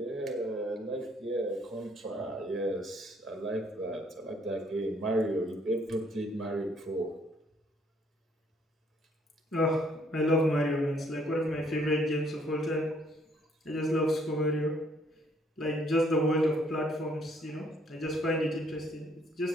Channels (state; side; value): normal; both; correlation 0.65